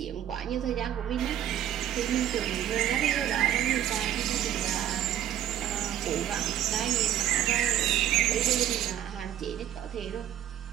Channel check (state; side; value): quieter; left; 11.3 dB